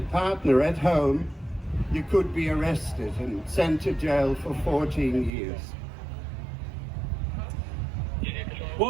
partner at home, you could be arrested and sent to jail for 14 years.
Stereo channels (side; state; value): left; drops out; at 5.3 s